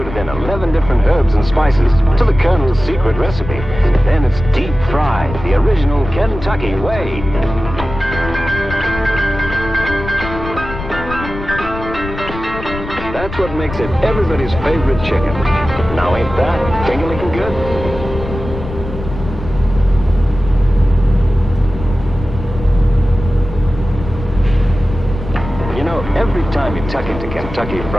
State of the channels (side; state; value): left; noise; rumble, 10 dB below the sound